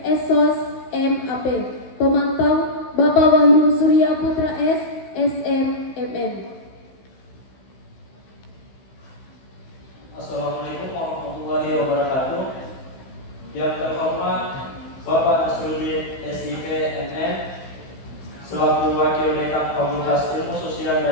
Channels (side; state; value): right; late; 16 ms